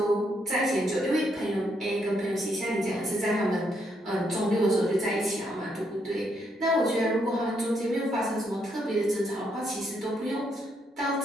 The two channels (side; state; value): both; normal; correlation 0.76